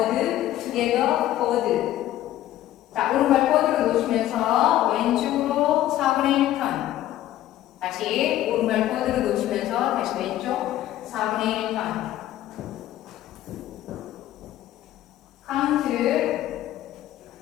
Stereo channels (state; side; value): quieter; right; 13.5 dB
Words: 투게더 포드. 자, 오른발 포드로 놓으시면서 왼쪽으로 4분의 1 턴. 다시 오른발 포드로 놓으시면서 다시 왼쪽 4분의 1 턴. count